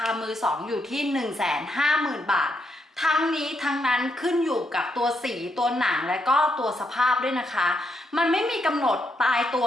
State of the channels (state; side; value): normal; both; correlation 0.79